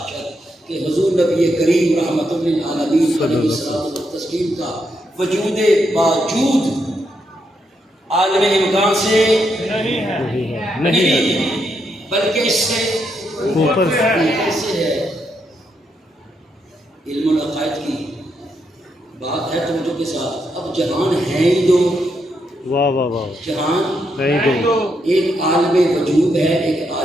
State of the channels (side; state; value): both; normal; correlation 0.80